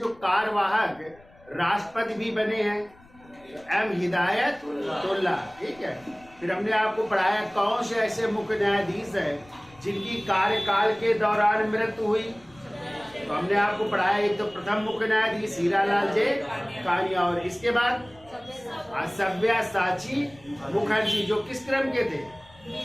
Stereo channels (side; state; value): left; noise; rumble, 26 dB below the sound